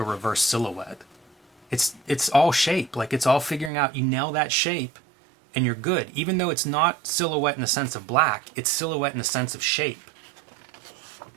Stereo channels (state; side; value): drops out; left; at 3.7 s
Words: reverse silhouette. It's all shape. Like it's all figuring out, you nail that shape and you're good. Even though it's not silhouette in the sense of black, it's silhouette in the sense of shape.